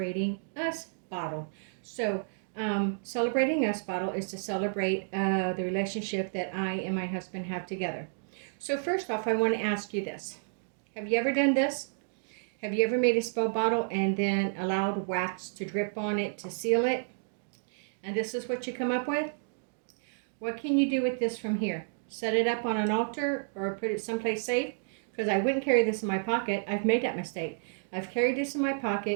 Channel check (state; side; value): silent; left; digital silence